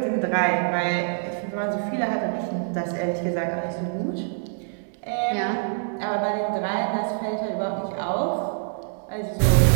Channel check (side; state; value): left; silent; digital silence